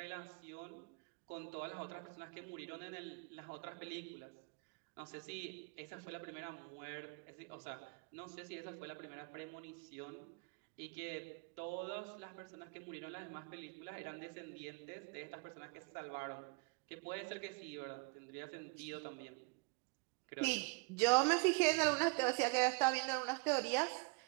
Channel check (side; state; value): left; quieter; 30.0 dB